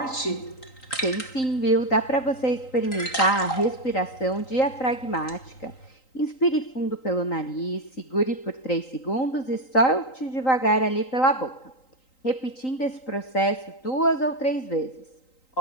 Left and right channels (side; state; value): right; late; 3.9 ms